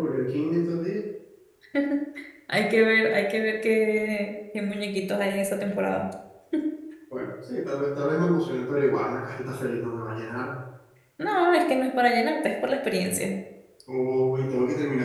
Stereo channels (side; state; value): both; identical; correlation 1.00